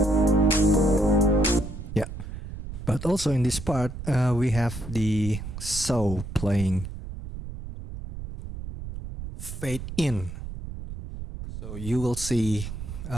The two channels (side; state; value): right; noise; rumble, 9 dB below the sound